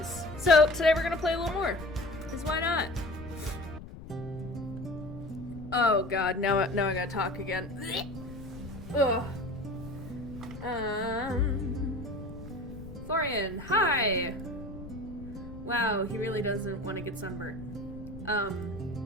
So today we're gonna play a little more, because why not? Oh god, now I gotta talk again. Ugh. Florian, hi! Wow, he really doesn't want to get sunburned.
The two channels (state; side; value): noise; left; rumble, 13 dB below the sound